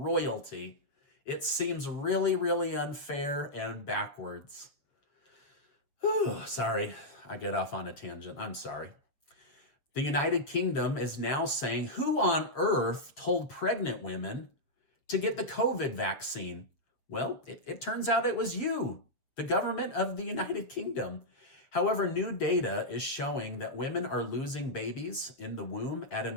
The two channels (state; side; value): late; right; 7.4 ms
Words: It seems really, really unfair and backwards. Whew, sorry, I get off on a tangent. I'm sorry. The United Kingdom is now saying, who on earth told pregnant women to get the COVID vaccine? Well, it turns out it was you, the government of the United Kingdom. However, new data is showing that women are losing babies in the womb at an